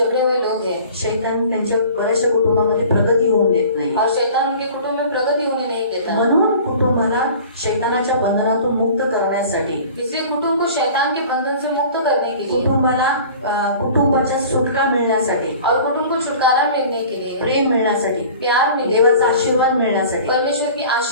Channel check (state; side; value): inverted; both; correlation -0.44